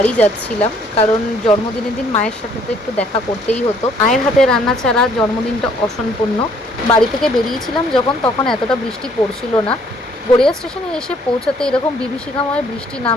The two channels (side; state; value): both; normal; correlation 0.63